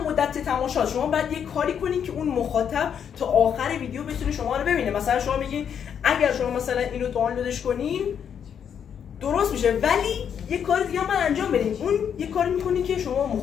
مدت تماشا شما باید یه کاری کنین که اون مخاطب تا آخر ویدیو بتونه شما رو ببینه. مثلا شما میگین اگر شما مثلا اینو دانلودش کنین درست میشه، ولی یه کار دیگه من انجام بدین. اون یه کاری میکنین که شما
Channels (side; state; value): right; quieter; 8.1 dB